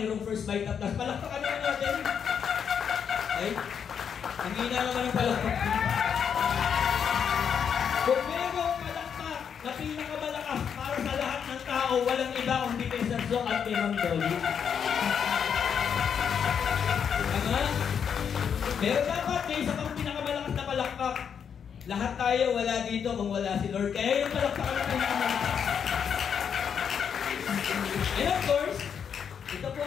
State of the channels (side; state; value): right; quieter; 7.5 dB